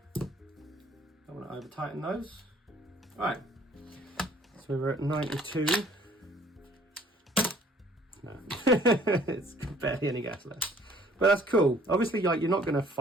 Don't want to over tighten those. Right, so we're at 92. No, it's barely any gas left, but that's cool. Obviously, like, you're not going to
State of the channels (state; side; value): normal; both; correlation 0.57